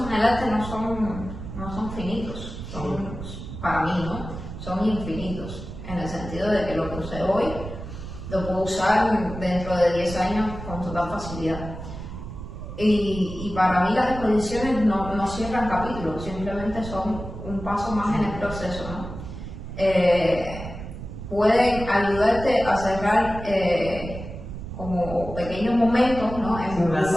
en el arte no son finitos, para mí, ¿no? Son infinitos, en el sentido de que lo que usé hoy lo puedo usar dentro de 10 años con total facilidad. Y para mí las exposiciones no cierran capítulos, simplemente son un paso más en el proceso, ¿no? Pueden ayudarte a cerrar como pequeños momentos, ¿no? En un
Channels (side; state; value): right; noise; rumble, 10 dB below the sound